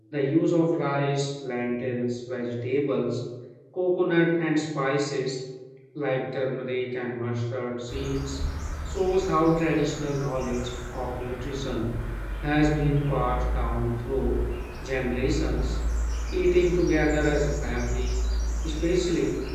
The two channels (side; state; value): both; identical; correlation 1.00